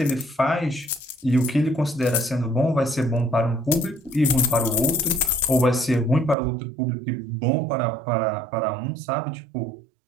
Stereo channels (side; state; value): left; drops out; at 6.4 s